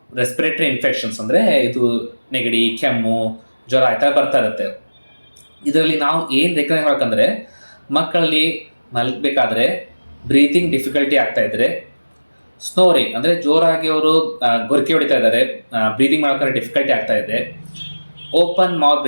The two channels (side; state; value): both; inverted; correlation -1.00